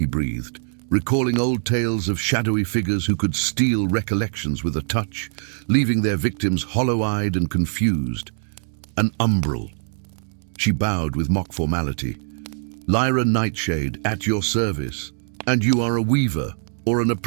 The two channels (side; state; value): left; silent; digital silence